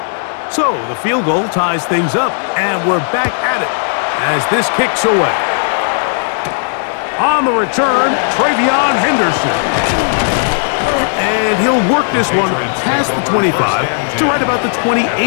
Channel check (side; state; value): right; silent; digital silence